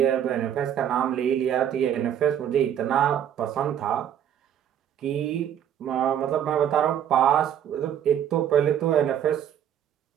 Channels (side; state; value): left; quieter; 9.8 dB